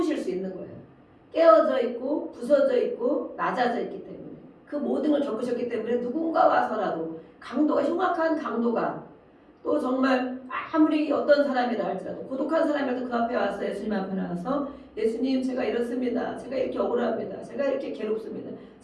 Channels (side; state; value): both; identical; correlation 1.00